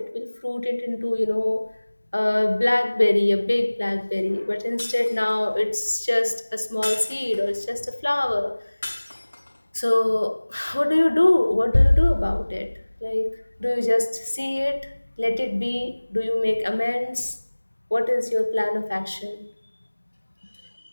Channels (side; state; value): both; inverted; correlation -1.00